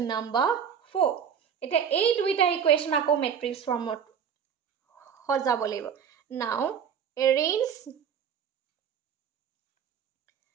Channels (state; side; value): quieter; left; 7.7 dB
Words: number 4 এটা এই দুইটা ইকুয়েশন আকো ম্যাট্রিক্স ফর্মত সজাব লাগিব now arrange